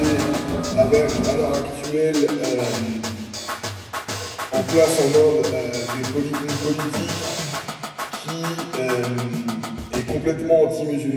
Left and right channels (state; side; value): identical; both; correlation 1.00